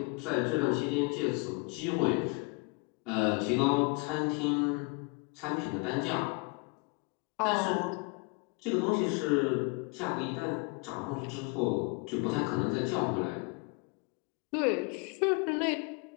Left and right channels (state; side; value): quieter; right; 30.8 dB